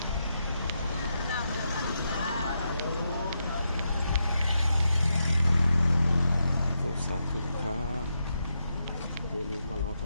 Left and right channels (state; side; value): inverted; both; correlation -0.84